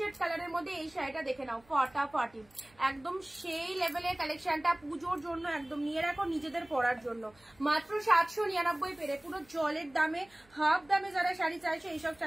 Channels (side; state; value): right; noise; hum, 30 dB below the sound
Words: কালারের মধ্যে এই শাড়িটা দেখে নাও, ফাটাফাটি, একদম সেই লেভেলের কালেকশনটা, পুজোর জন্য একদম নিয়ে রাখো, নিজেদের পরার জন্য। মাত্র 799 পেরে, পুরো জলের দামে, হাফ দামে যারা শাড়ি চাইছে এইসব